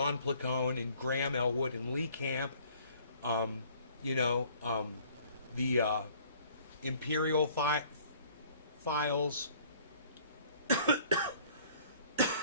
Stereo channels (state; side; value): inverted; both; correlation -0.56